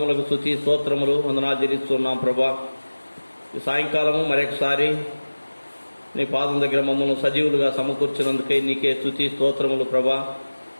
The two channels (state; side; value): inverted; both; correlation -1.00